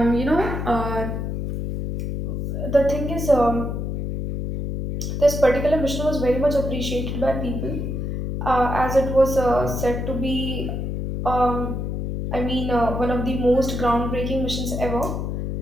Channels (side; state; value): left; noise; hum, 3 dB below the sound